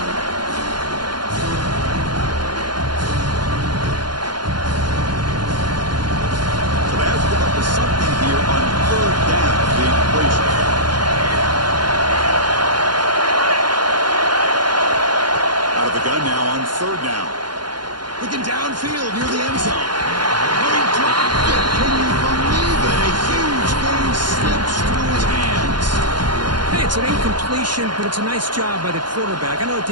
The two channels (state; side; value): late; left; 0.71 ms